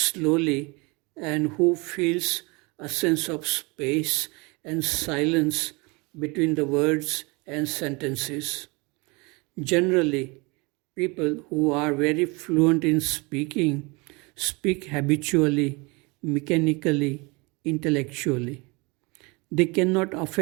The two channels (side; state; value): left; quieter; 27.4 dB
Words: and who feels a sense of space and silence between the words and sentences. Generally, people who are very fluent in speaking speak habitually, mechanically, intellectually. They cannot